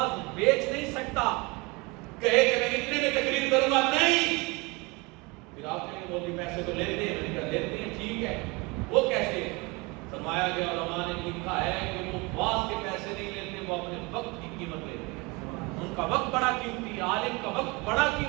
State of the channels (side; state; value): left; quieter; 26.4 dB